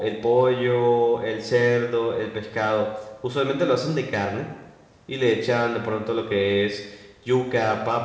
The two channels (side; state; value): both; identical; correlation 1.00